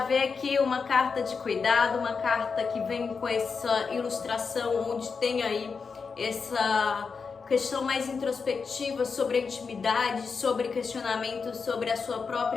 vê aqui uma carta de cuidado, uma carta que vem com essa ilustração onde tem aí essa questão mais introspectiva sobre a intimidade, sobre questionamentos sobre a sua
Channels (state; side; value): quieter; right; 5.3 dB